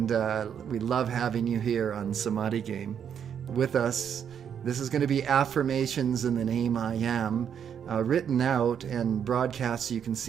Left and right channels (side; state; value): left; quieter; 8.2 dB